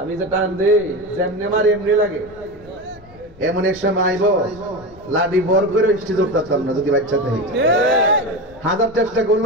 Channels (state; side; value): noise; left; rumble, 24 dB below the sound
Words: যে টান দেই যেমনে মার এমনি লাগে। এমন এক সময় আইব লাডি বর করে স্টেজ উঠতাম না যদি বাচ্চা থেকে, হাজার চেষ্টা